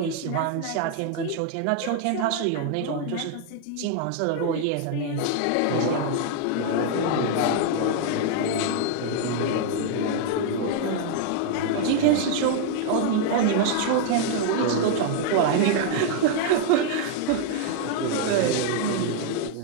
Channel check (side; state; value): both; different; correlation 0.00